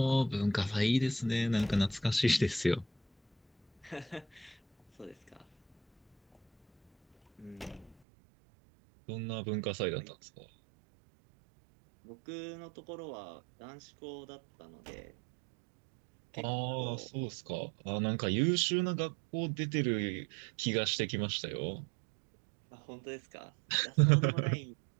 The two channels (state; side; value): drops out; left; at 8.0 s